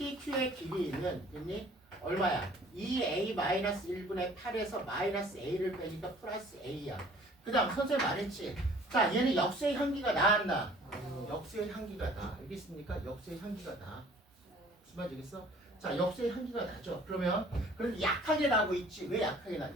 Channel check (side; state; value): both; normal; correlation 0.53